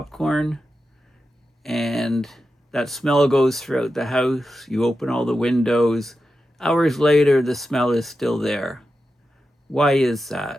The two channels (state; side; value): normal; both; correlation 0.90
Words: and that smell goes throughout the house. You open all the windows. Hours later, the smell is still there. Why is